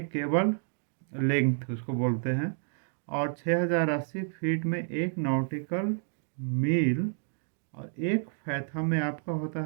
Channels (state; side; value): silent; left; digital silence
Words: केबल लेंथ उसको बोलते हैं, और 6080 फीट में एक नॉटिकल मील, और एक फैथम में आपका होता